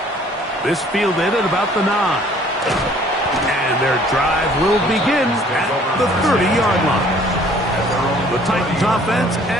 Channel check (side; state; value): both; normal; correlation 0.56